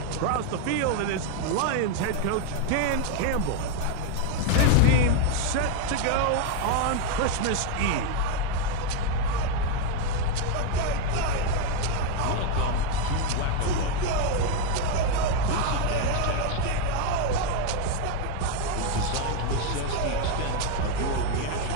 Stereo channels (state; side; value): different; both; correlation 0.01